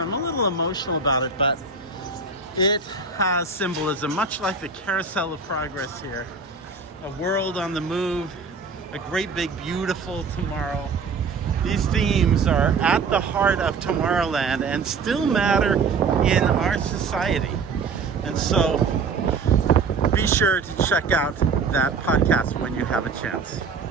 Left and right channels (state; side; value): quieter; left; 4.8 dB